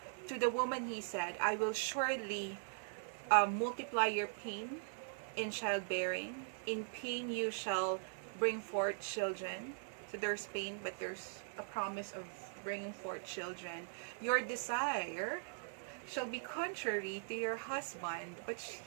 To the woman he said, I will surely multiply your pain in childbearing. In pain you shall bring forth children. So there's pain, but there's a promise of bringing forth children. Your desire shall be contrary to your husband, but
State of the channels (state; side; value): silent; left; 51 dB below the other